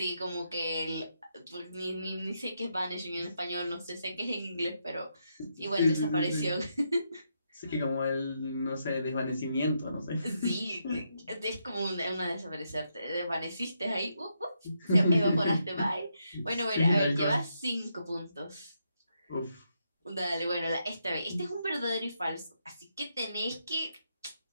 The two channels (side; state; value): both; inverted; correlation -0.80